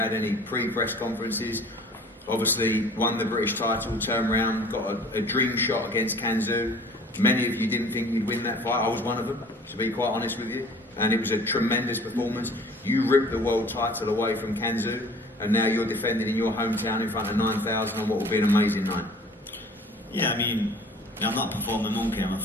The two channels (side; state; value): both; normal; correlation 0.49